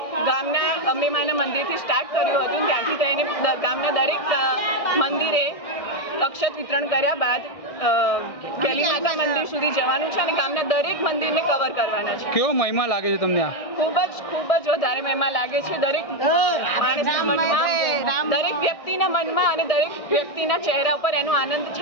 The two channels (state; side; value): late; right; 1.6 ms